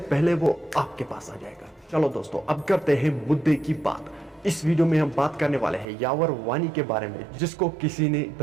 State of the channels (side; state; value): left; drops out; at 5.9 s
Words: پہلے وہ آپ کے پاس آ جائے گا. چلو دوستو اب کرتے ہیں مدعے کی بات. اس ویڈیو میں ہم بات کرنے والے ہیں یاور وانی کے بارے میں, جس کو کسی نے